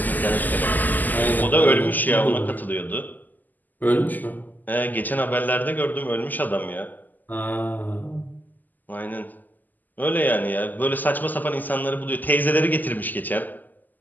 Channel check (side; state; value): right; late; 0.084 ms